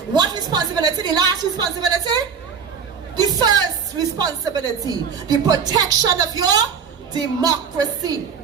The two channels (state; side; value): quieter; left; 6.5 dB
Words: What responsibility? The last responsibility? The first responsibility, the protection of your democracy.